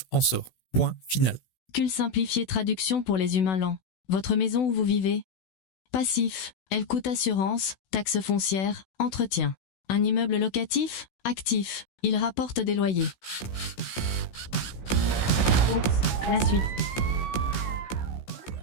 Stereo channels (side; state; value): right; late; 16 ms